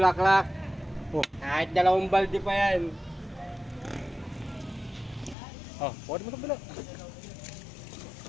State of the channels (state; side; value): drops out; right; at 5.4 s